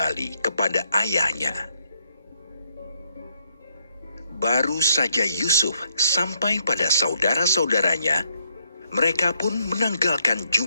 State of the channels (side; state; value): both; inverted; correlation -0.75